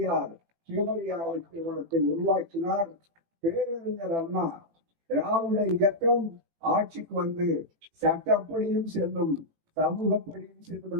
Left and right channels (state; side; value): late; left; 18 ms